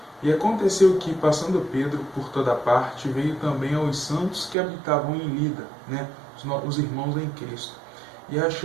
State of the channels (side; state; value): left; drops out; at 4.5 s